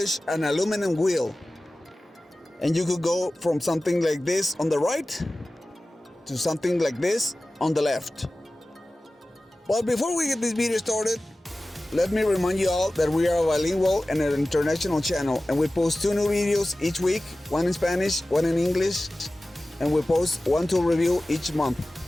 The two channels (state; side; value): normal; both; correlation 0.96